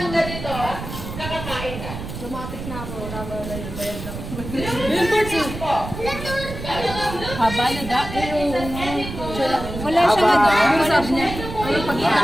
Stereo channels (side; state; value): right; noise; rumble, 9 dB below the sound